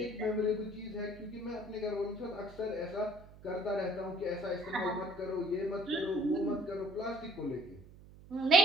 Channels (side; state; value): right; noise; hum, 20 dB below the sound